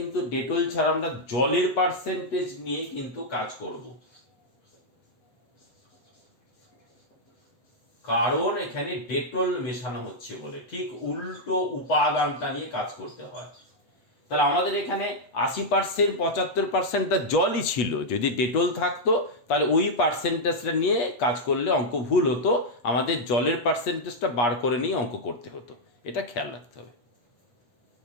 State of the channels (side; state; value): right; late; 8.3 ms